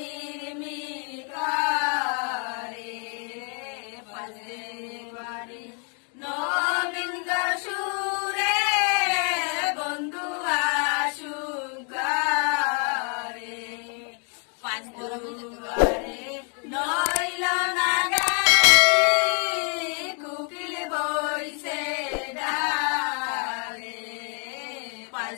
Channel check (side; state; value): right; quieter; 39.5 dB